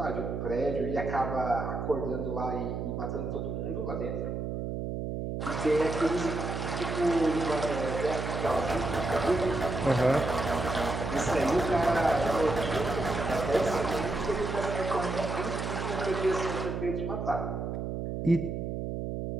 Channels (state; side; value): noise; right; hum, 3 dB below the sound